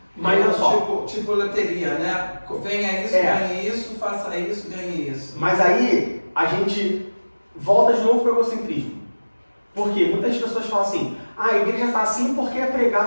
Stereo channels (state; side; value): inverted; both; correlation -1.00